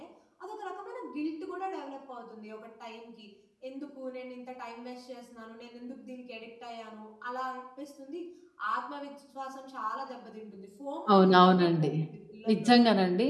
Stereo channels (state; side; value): identical; both; correlation 1.00